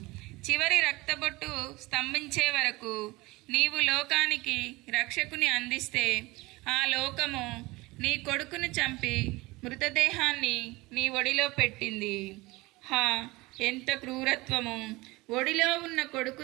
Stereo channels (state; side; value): quieter; left; 21.8 dB